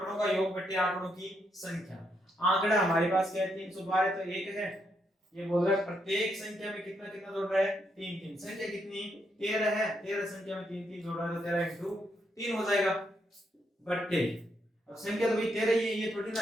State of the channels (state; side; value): normal; both; correlation 0.78